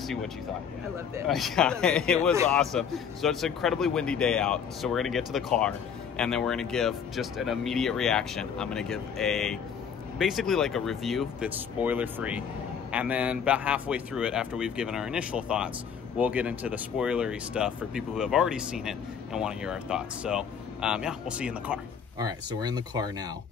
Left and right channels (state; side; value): quieter; right; 7.2 dB